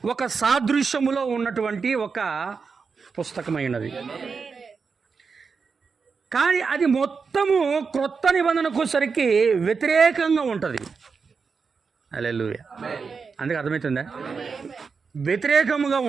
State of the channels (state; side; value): quieter; left; 5.2 dB